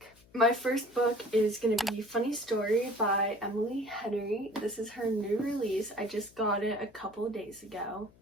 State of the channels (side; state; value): left; noise; hum, 28 dB below the sound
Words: My first book is gonna be Funny Story by Emily Henry. This is her new release. I just got it a couple of days ago